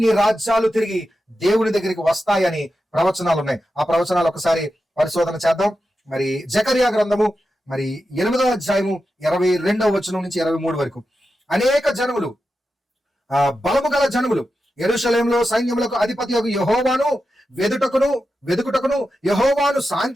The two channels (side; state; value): both; normal; correlation 0.90